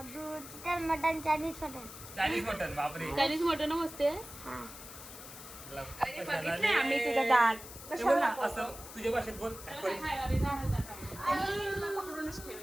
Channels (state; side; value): noise; left; hiss, 14 dB below the sound